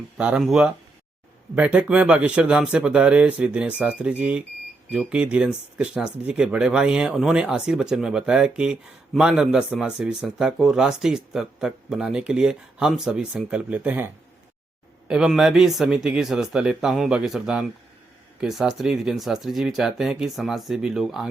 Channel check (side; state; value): left; quieter; 3.1 dB